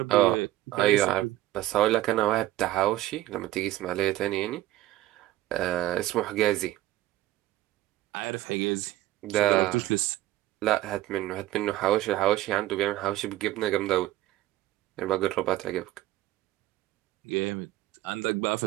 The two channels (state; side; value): quieter; left; 15.4 dB